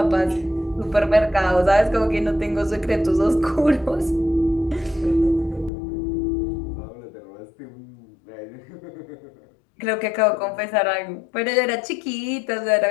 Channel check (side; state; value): right; drops out; at 5.7 s